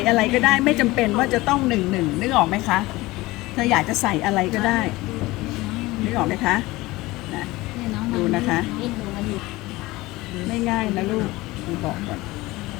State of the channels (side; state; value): right; quieter; 19.9 dB